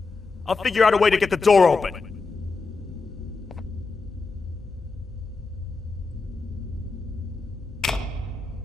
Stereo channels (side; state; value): right; quieter; 4.1 dB